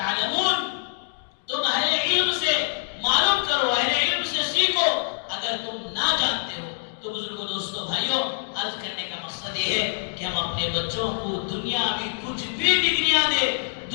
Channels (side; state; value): right; silent; digital silence